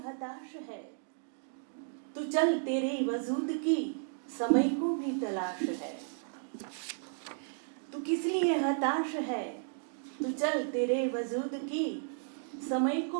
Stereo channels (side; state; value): left; silent; digital silence